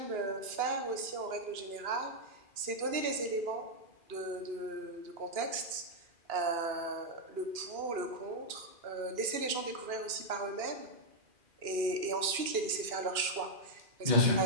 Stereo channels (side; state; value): left; late; 2.4 ms